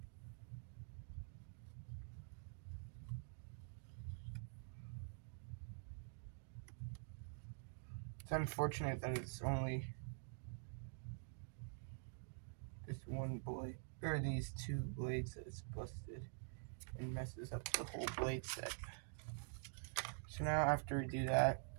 It's unfortunate that it's only this one blade, or these two blades that it's busted and messes up the whole blade set. So now after we do that,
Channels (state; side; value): silent; left; digital silence